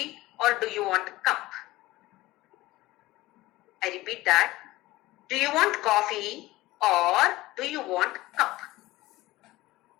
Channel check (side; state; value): right; quieter; 18.3 dB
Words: or do you want a cup? I repeat that. Do you want coffee or do you want a cup?